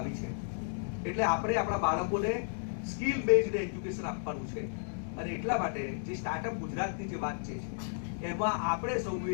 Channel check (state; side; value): silent; right; digital silence